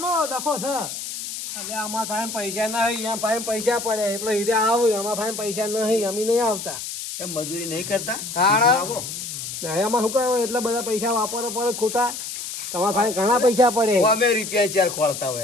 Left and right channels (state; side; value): noise; left; hiss, 7 dB below the sound